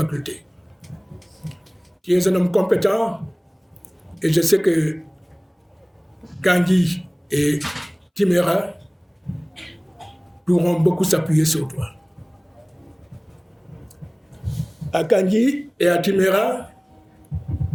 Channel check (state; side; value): identical; both; correlation 1.00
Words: Tu es un homme compétent et je sais que Kandji et Timéra pourront beaucoup s'appuyer sur toi. À Kandji et à Timéra,